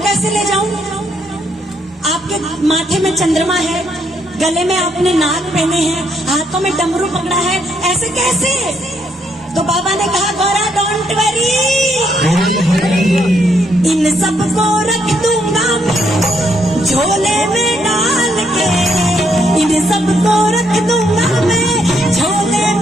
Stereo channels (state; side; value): normal; both; correlation 0.73